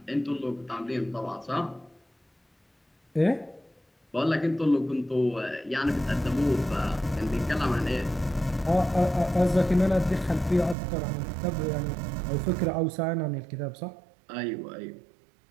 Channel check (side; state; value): left; drops out; at 10.8 s